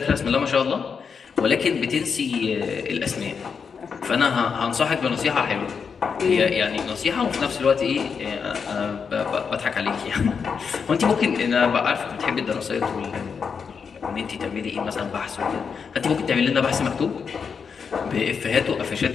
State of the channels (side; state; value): right; quieter; 6.0 dB